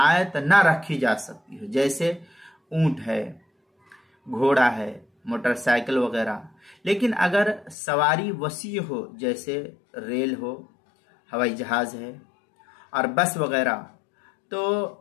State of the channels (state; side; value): drops out; right; at 7.8 s